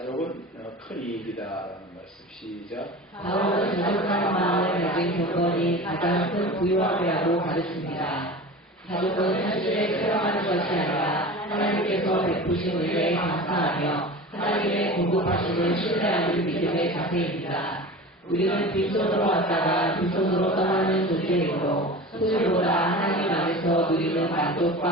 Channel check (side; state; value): both; normal; correlation 0.34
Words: 큰 이익이다라는 말씀 시작. 바울은 자족하는 마음을 가진 경건이 가장 큰 부유함이라고 가르칩니다. 자족은 현실에 체험하는 것이 아니라 하나님께서 베푸신 은혜에 감사하며 하나님의 공급하심을 신뢰하는 믿음의 자세입니다. 우리는 빈손으로 왔다가 빈손으로 떠나는 존재이므로 소유보다 하나님 안에서 누리는 만족과